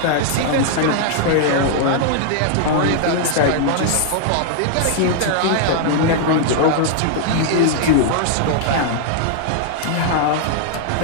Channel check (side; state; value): both; different; correlation -0.01